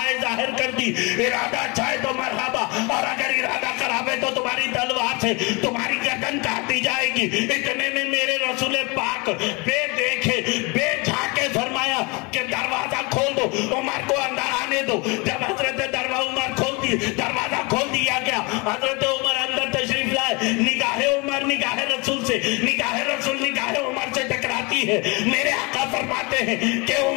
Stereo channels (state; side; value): quieter; right; 28.1 dB